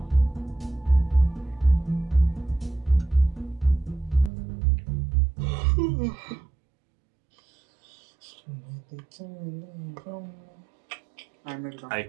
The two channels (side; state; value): left; drops out; at 4.3 s